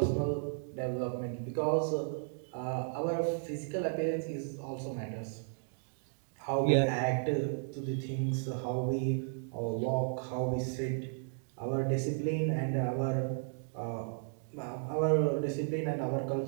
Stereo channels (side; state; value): left; silent; digital silence